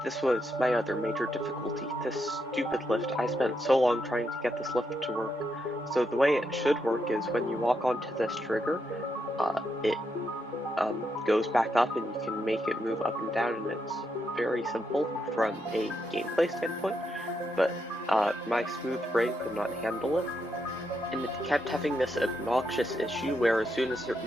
This was my other major difficulty, this stupid lift. I spent so long trying to get this lift to work. So the way it should work is when you walk onto this trigger, it goes back up and you can make it move up and down, and it's very simple from a gameplay standpoint, but my smooth brain could not handle it, and it kept having this obnoxious issue where as soon as it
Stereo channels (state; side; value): normal; both; correlation 0.81